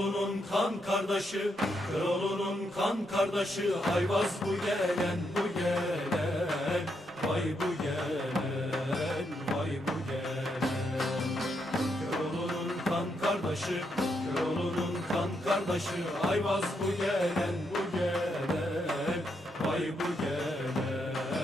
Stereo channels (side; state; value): both; normal; correlation 0.79